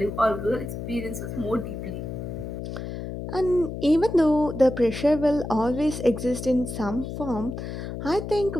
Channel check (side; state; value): left; noise; hum, 7 dB below the sound